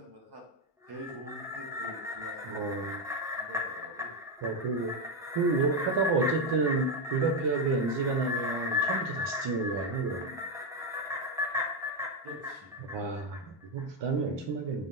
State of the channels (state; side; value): normal; both; correlation 0.07